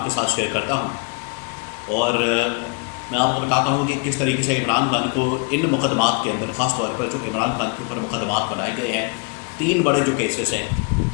کے ساتھ شیئر کرتا ہوں، اور میں آپ کو بتاتا ہوں کہ کس طریقے سے عمران خان کو ان مقدمات کے اندر، خاص طور پر جو عمران خان کے اوپر مقدمات بنائے گئے ہیں، 3 بڑے جو کیسز ہیں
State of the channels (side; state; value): right; quieter; 33.2 dB